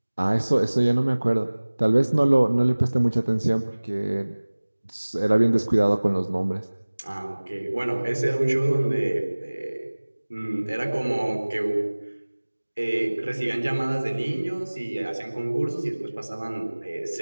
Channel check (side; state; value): both; inverted; correlation -1.00